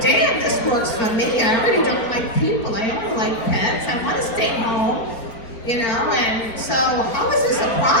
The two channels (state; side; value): late; right; 4.2 ms